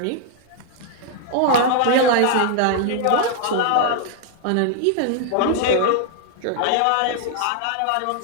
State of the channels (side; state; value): both; different; correlation 0.00